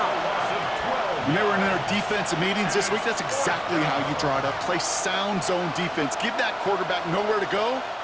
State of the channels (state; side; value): identical; both; correlation 1.00